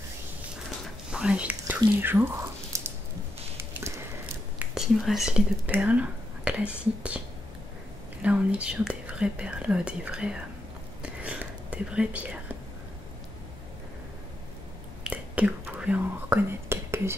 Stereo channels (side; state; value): both; normal; correlation 0.83